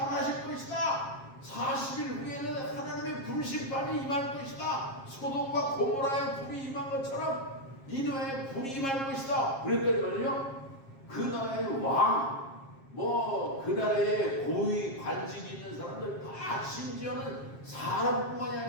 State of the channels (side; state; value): right; late; 7.4 ms